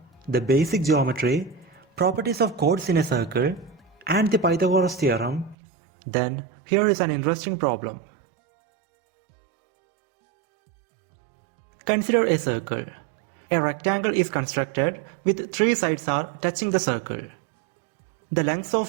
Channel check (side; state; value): left; drops out; at 5.6 s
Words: the basic geometry, properties of chords in a circle and the Pythagoras theorem, then here is an interesting problem. Consider a circle. A rectangle is constructed with three sides are touching the circle. The lengths